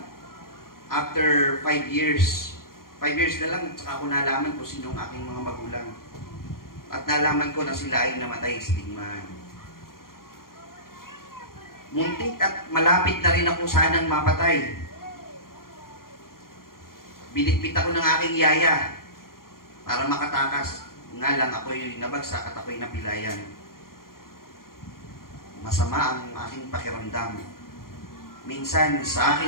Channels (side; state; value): right; late; 0.92 ms